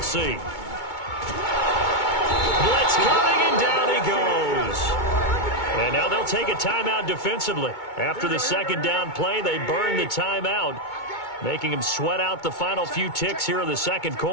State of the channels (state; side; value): late; right; 2.2 ms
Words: see. Blitz coming, and down he goes. And now they'll take a timeout defensively. After the second down play, they burn the timeout, making him sweat out the final few ticks here in the second